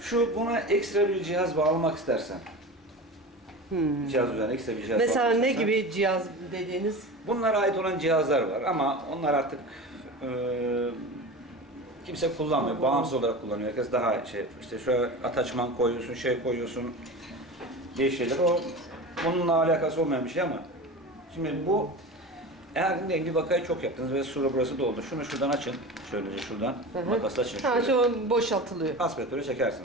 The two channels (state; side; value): normal; both; correlation 0.30